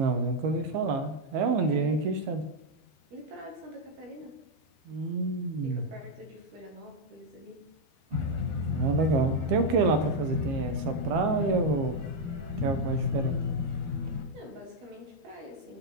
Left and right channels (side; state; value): left; late; 12 ms